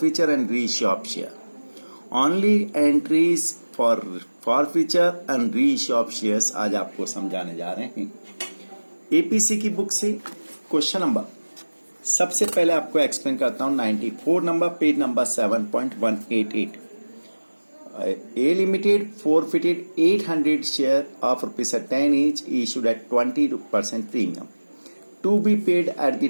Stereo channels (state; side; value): inverted; both; correlation -1.00